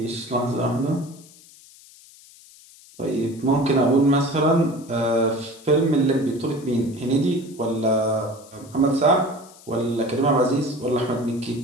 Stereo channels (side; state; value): left; noise; hiss, 23 dB below the sound